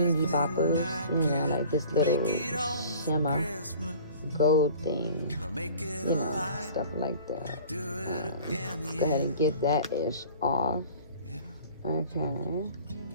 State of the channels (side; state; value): both; inverted; correlation -0.46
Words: boppers, like this little shimmer gold thing, stuff like that. Let's go ahead and get that ish off. Okay.